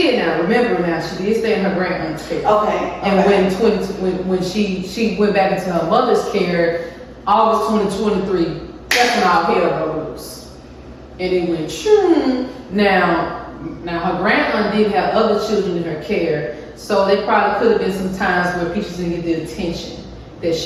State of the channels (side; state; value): both; identical; correlation 1.00